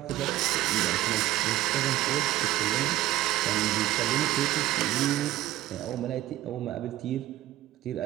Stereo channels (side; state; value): left; quieter; 15.1 dB